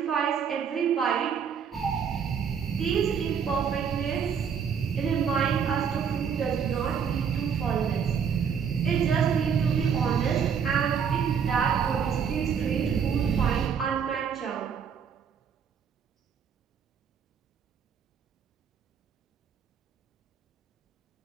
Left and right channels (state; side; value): quieter; left; 7.1 dB